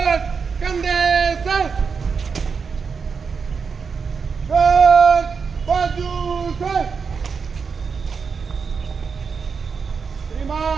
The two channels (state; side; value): quieter; left; 5.6 dB